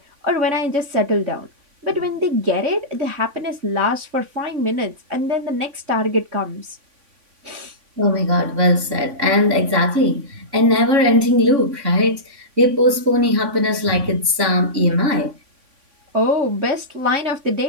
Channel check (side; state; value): left; late; 3.5 ms